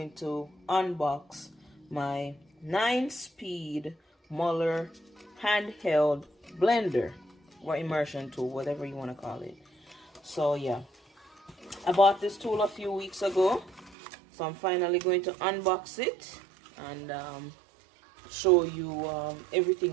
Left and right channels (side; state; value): left; drops out; at 14.0 s